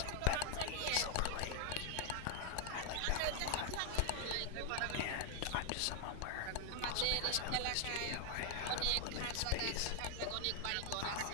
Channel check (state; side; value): different; both; correlation 0.00